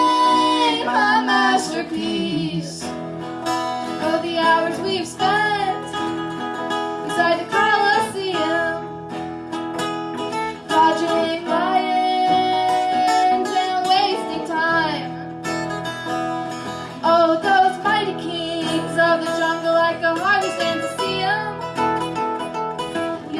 paint my masterpiece. Oh, the hours we've spent inside the Colosseum, dodging lions and wasting time. Oh, those mighty kings of the jungle, I could hardly stand to see them.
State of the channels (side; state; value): both; identical; correlation 1.00